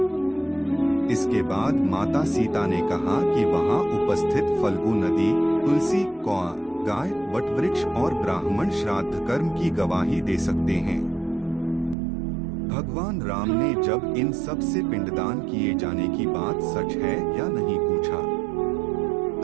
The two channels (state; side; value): drops out; left; at 12.0 s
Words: इसके बाद माता सीता ने कहा कि वहां उपस्थित फल्गु नदी, तुलसी, कौआ, गाय, वटवृक्ष और ब्राह्मण श्राद्ध कर्म की गवाही दे सकते हैं। भगवान राम ने जब इन सब से पिंडदान किए जाने की बात सच है या नहीं पूछा,